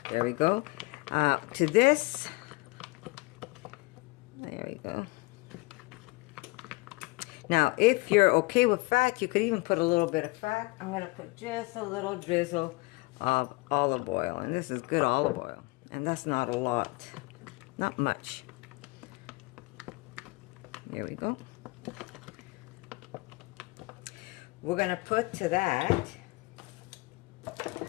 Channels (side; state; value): right; quieter; 24.2 dB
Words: There we go. To this, there we go. Now, if you're okay with fat, you could even put a little bit of fat. I'm going to put just a little drizzle of olive oil. And this is good olive oil. And that's not a lot. Not much. There we go. We're going to put to that...